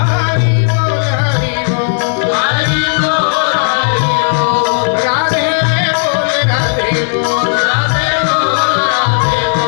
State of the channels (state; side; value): silent; right; digital silence